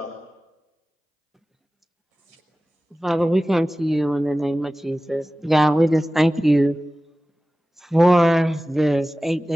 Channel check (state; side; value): normal; both; correlation 0.96